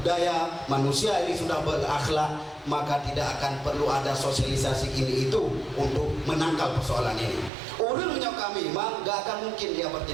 manusia ini sudah berakhlak, maka tidak akan perlu ada sosialisasi ini itu untuk menangkal persoalan ini. Urun menyok kami, gak akan mungkin dia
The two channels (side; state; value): left; drops out; at 7.5 s